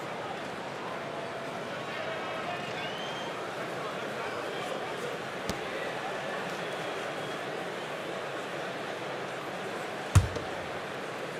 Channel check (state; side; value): identical; both; correlation 1.00